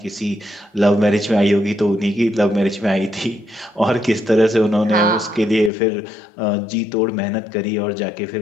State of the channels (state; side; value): drops out; right; at 5.7 s